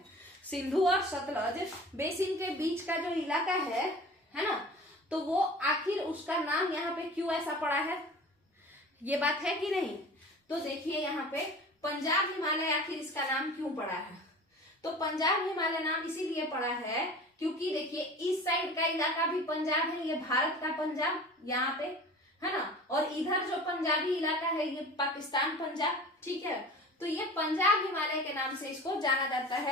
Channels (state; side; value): normal; both; correlation 0.40